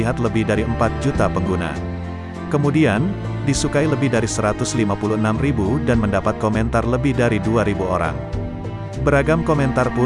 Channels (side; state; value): both; identical; correlation 1.00